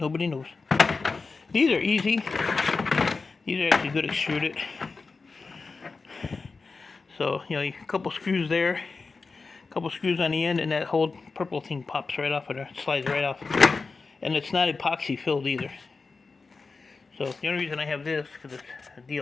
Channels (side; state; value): right; quieter; 4.3 dB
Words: knows. These are easy. These are actually good extruded. So, you know, a couple screws there, a couple screws on the end, and that whole purple thing pops right off of there, slides right off. And it's not epoxy filled either. So the only reason I have this, because it's a